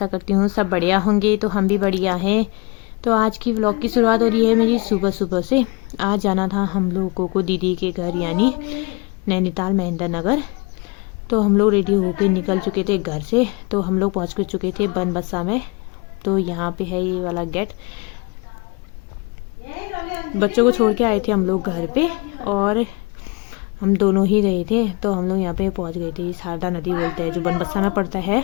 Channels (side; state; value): right; quieter; 28.1 dB